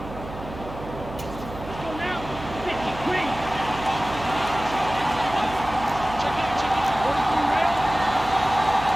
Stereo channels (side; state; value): right; noise; hum, 12 dB below the sound